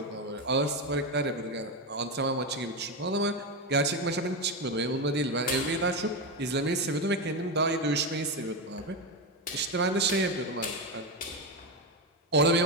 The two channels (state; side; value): normal; both; correlation 0.12